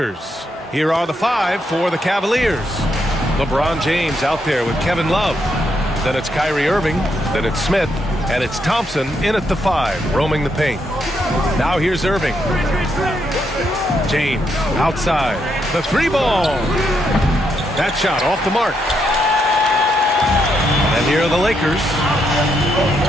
Here are the five for the Cavaliers. LeBron James out there with Kevin Love. Then it's Kyrie Irving. Then it's Smith. And it's Thompson in at the five, roaming the paint. Now here's Irving. James outside. The three ball. That shot off the mark. And here are the Lakers.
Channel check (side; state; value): both; normal; correlation 0.78